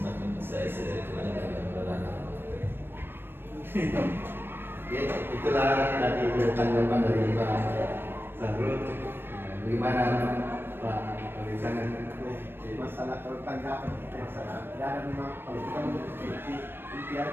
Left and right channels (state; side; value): late; left; 0.10 ms